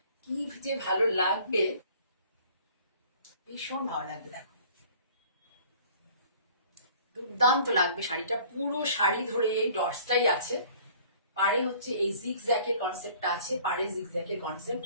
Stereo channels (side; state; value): both; inverted; correlation -0.52